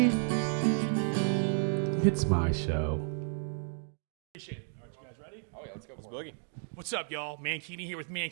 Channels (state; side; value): silent; left; digital silence